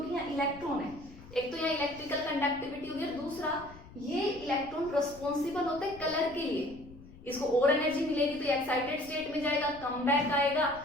यहाँ इलेक्ट्रॉन है। एक तो यहाँ इलेक्ट्रिकल कंडक्टिविटी होगी, और दूसरा ये इलेक्ट्रॉन रिस्पॉन्सिबल होते हैं कलर के लिए। इसको और एनर्जी मिलेगी तो एक्साइटेड स्टेट में जाएगा, कम बैक आएगा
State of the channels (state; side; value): noise; left; rumble, 19 dB below the sound